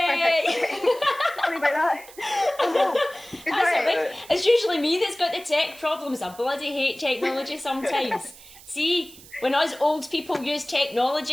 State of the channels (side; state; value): right; noise; hiss, 20 dB below the sound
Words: Sorry about that. It's usually me that's got the tech problems. I bloody hate technology sometimes. See, when us old people use